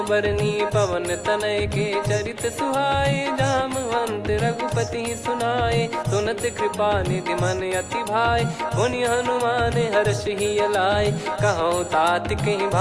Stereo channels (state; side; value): identical; both; correlation 1.00